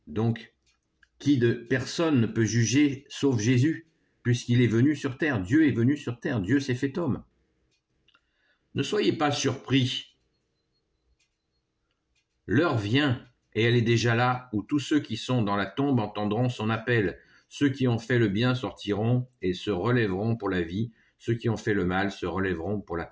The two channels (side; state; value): both; identical; correlation 1.00